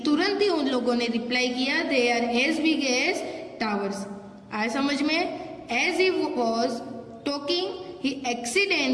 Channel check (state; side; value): identical; both; correlation 1.00